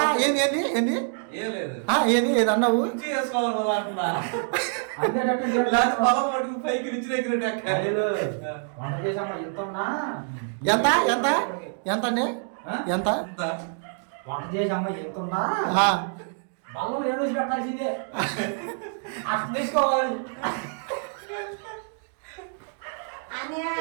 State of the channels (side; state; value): left; silent; 61 dB below the other